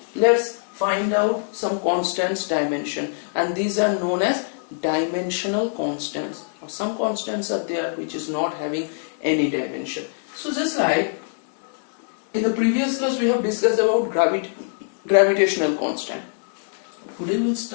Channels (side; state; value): right; silent; 63 dB below the other